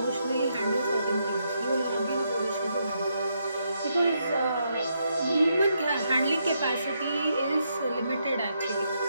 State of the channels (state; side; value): inverted; both; correlation -0.79